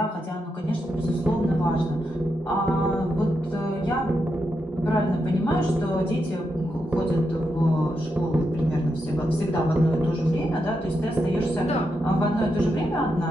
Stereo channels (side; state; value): both; normal; correlation 0.84